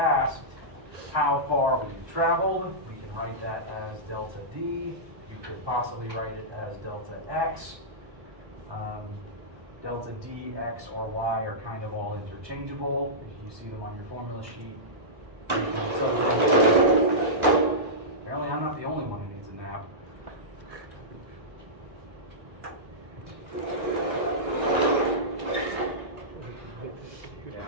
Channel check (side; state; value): left; late; 1.1 ms